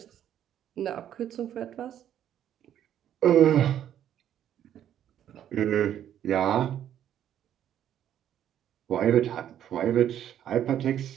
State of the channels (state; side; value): quieter; left; 10.5 dB